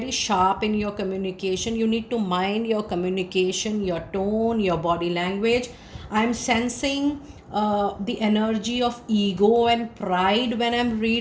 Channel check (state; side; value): identical; both; correlation 1.00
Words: sharp in your communication. You need to mind your communication, your tone, your body language. I'm sensing the energy of ego and pride when I'm